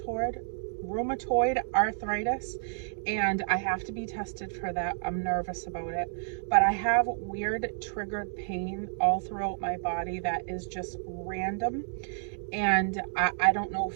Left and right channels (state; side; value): silent; left; digital silence